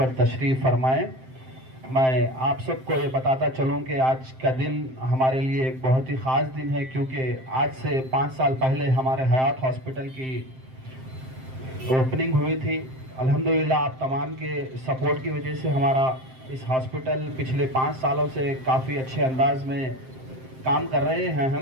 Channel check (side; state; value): left; late; 7.7 ms